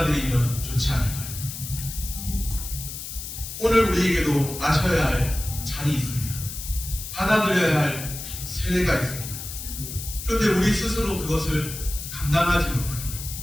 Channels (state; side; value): noise; left; hiss, 9 dB below the sound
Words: 좋지 않을까요? 오늘 우리에게도 마셔야 할 잔이 있습니다. 받아들여야 할 세례가 있습니다. 그런데 우리 스스로 그것을 감당하지 못합니다.